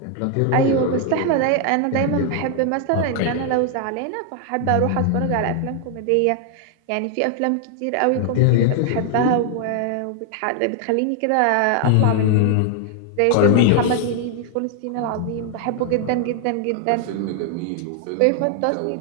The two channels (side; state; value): both; different; correlation 0.00